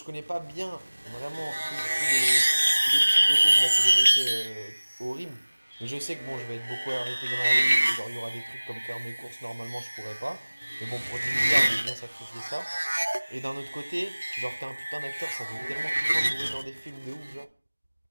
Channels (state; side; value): inverted; both; correlation -1.00